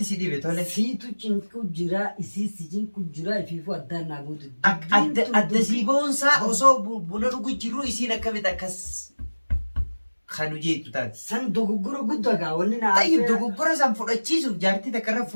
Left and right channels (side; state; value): both; inverted; correlation -1.00